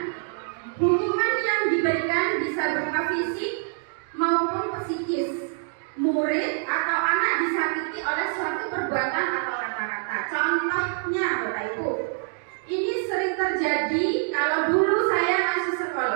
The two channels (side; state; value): left; silent; 61 dB below the other